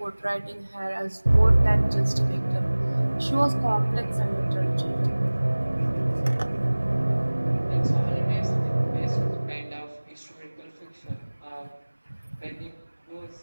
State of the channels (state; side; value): inverted; both; correlation -1.00